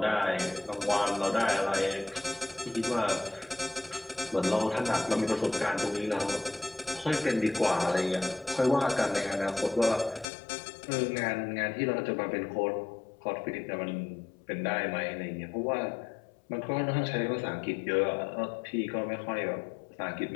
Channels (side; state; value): right; drops out; at 10.2 s